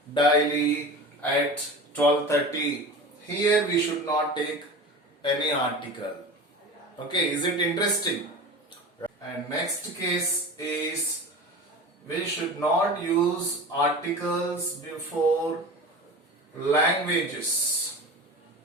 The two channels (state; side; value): normal; both; correlation 0.33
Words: daily at 12:30. Here we should not take any article. Okay, is it interesting? And next case is we should not use articles before languages.